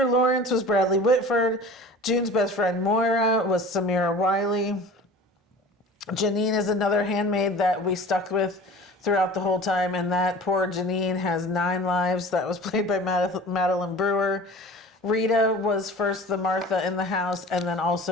Lawrence was Bradley Whitford. June's best friend Moira was Samira Wiley. Janine is another handmaid that we stuck with throughout the whole time, and that poor Janine has 9 lives. That was played by Madeline Brewer. Rita was first the Martha in the house, and then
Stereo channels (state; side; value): normal; both; correlation 0.40